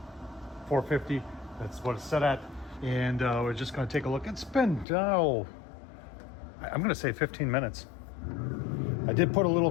that's what it's set at. And we're just gonna take a look. It's been, I'm gonna say 15 minutes. I did put a little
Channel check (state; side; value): drops out; right; at 4.9 s